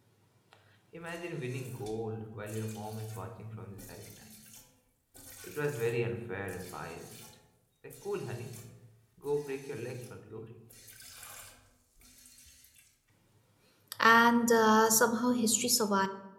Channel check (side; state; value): both; identical; correlation 1.00